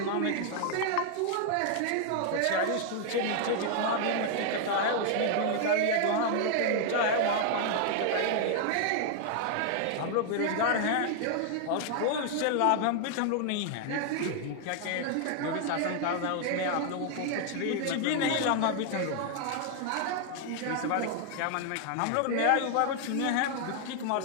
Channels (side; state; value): both; different; correlation 0.00